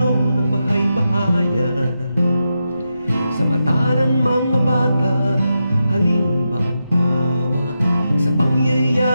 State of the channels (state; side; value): inverted; both; correlation -0.88